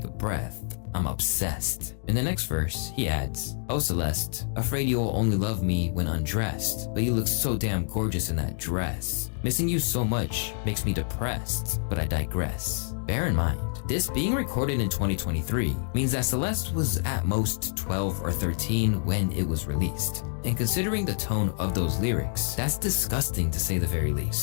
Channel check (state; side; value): silent; right; digital silence